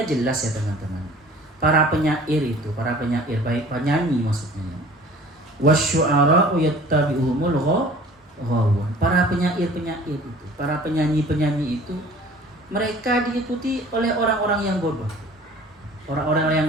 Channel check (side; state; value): both; normal; correlation 0.48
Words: jelas ya teman-teman. Para penyair baik penyanyi maksudnya. Wasyu'ara'u yattabi'uhumul ghawun. Para penyair itu, para penyanyi itu mereka diikuti oleh orang-orang yang bodoh. Orang-orang yang